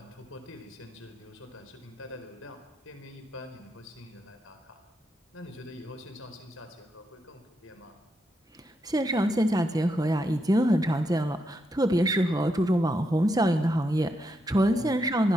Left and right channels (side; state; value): both; normal; correlation 0.82